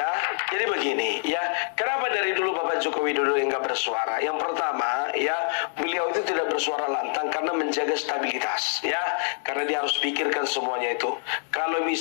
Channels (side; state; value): right; silent; 61 dB below the other